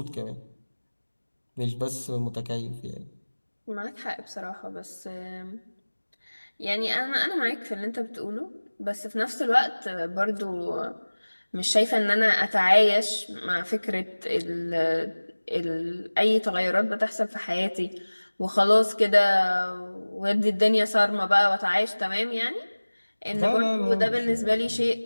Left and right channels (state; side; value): inverted; both; correlation -1.00